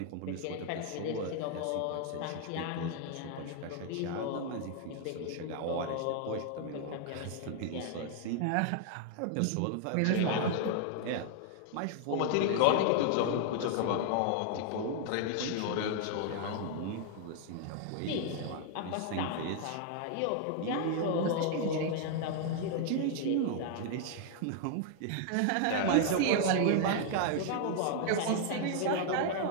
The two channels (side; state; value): both; different; correlation 0.00